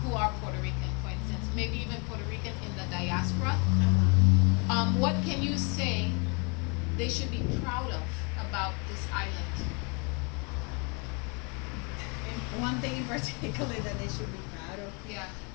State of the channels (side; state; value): right; quieter; 33.2 dB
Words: who are Puerto Rican, for instance, maybe even Puerto Rican in the diaspora, what can you say they should be proud of about this island? One thing in particular that they should be proud of. Yeah.